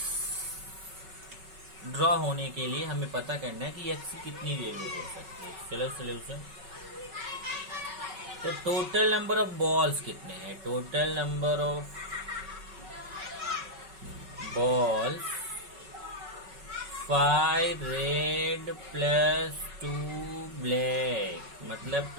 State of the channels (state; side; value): late; left; 5.3 ms